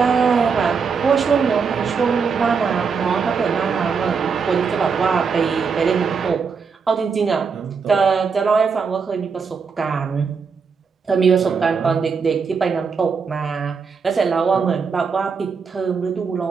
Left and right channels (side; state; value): left; quieter; 5.6 dB